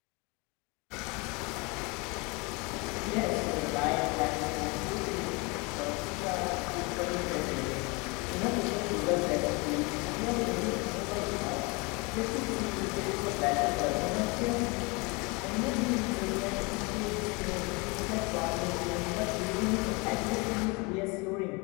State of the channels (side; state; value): right; quieter; 28.2 dB